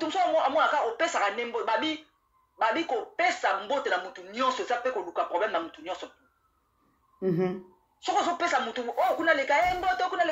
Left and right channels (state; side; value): identical; both; correlation 1.00